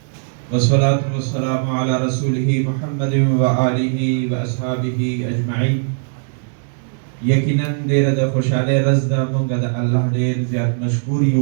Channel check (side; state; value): left; silent; digital silence